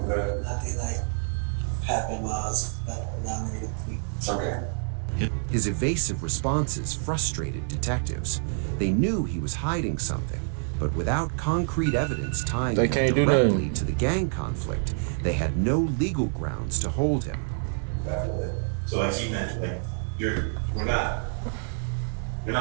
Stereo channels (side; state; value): left; silent; 60 dB below the other